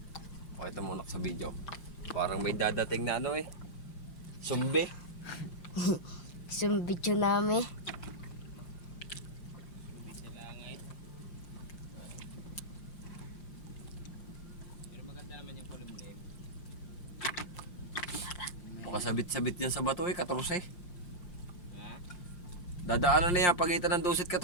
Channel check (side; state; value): right; late; 5.7 ms